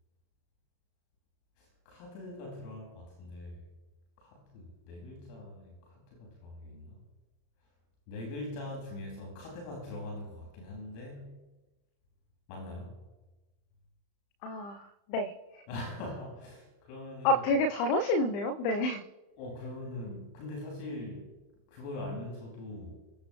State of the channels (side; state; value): right; late; 35 ms